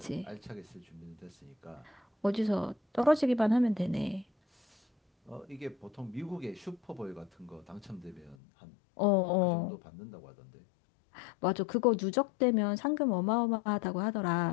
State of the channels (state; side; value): drops out; right; at 8.3 s